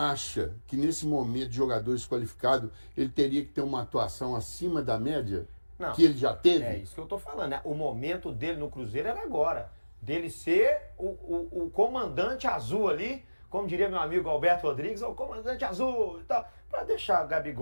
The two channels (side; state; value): both; inverted; correlation -1.00